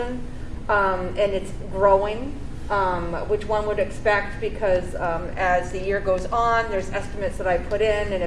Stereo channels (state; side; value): identical; both; correlation 1.00